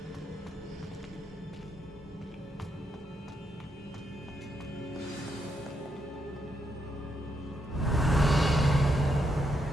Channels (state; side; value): normal; both; correlation 0.79